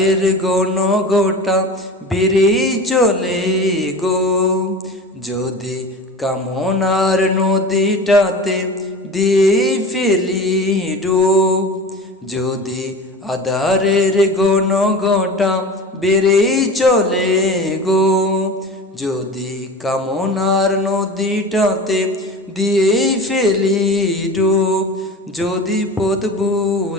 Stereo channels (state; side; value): normal; both; correlation 0.34